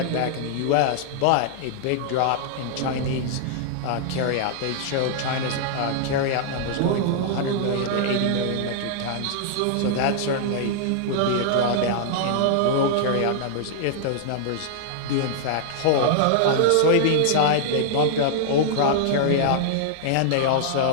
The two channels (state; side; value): different; both; correlation -0.01